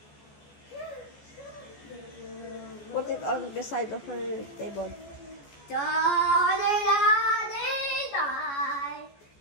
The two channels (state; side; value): late; right; 14 ms